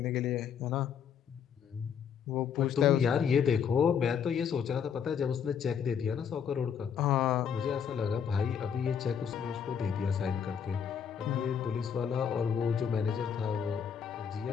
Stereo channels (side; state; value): right; quieter; 7.5 dB